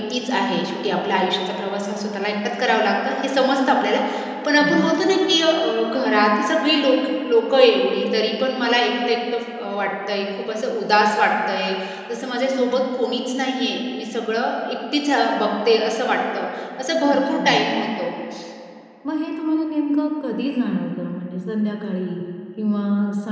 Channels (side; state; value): both; identical; correlation 1.00